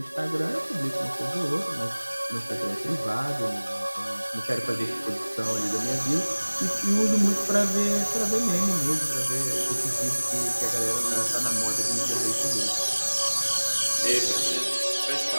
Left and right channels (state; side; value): inverted; both; correlation -1.00